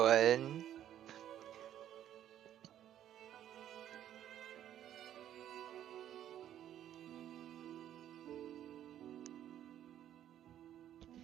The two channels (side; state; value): left; quieter; 11.1 dB